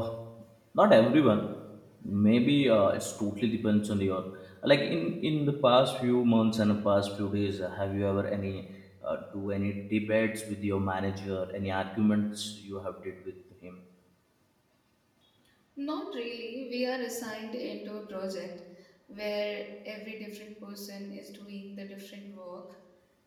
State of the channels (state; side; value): identical; both; correlation 1.00